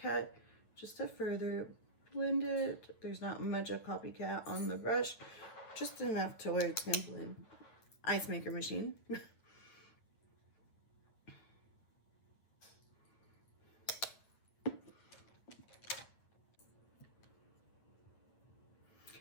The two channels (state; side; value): late; right; 9.0 ms